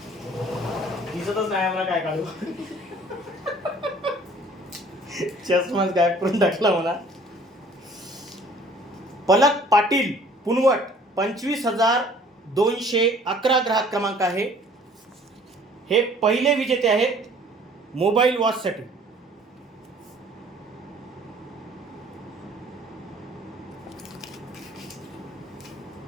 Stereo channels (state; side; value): normal; both; correlation 0.54